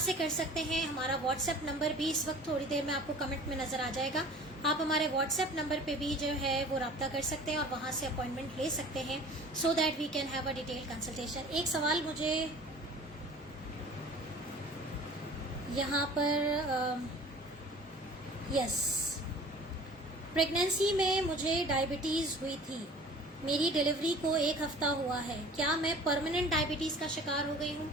کر سکتے ہیں. ہمارا واٹس ایپ نمبر بھی اس وقت تھوڑی دیر میں آپ کو کمنٹ میں نظر آ جائے گا. آپ ہمارے واٹس ایپ نمبر پہ بھی جو ہے وہ رابطہ کر سکتے ہیں اور وہاں سے اپوائنٹمنٹ لے سکتے ہیں, so that we can have a detail consultation. ایک سوال مجھے یہاں پر, یس, پریگنینسی میں مجھے ڈائبٹیز ہوئی تھی, میری ڈیلیوری کو 1 ہفتہ ہوا ہے, کیا میں پرماننٹ ڈائبٹیز کا شکار ہو گئی ہوں؟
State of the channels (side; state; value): both; normal; correlation 0.45